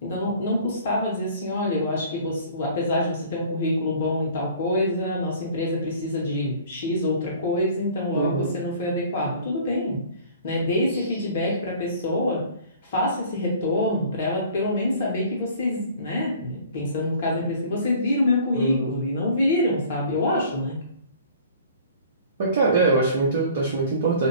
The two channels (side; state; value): both; inverted; correlation -0.49